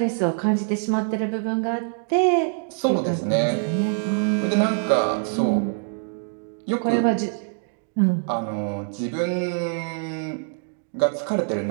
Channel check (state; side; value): silent; left; 62 dB below the other